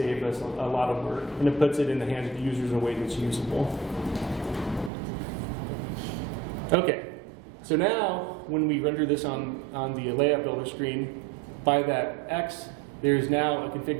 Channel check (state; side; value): drops out; left; at 4.9 s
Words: us a lot of work, and it puts it in the hands of the users in a way that's usable. Okay, so now when we render this on the layout builder screen, by that X, there's now a